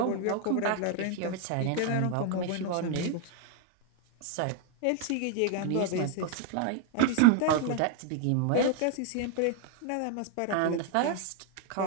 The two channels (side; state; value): both; different; correlation 0.00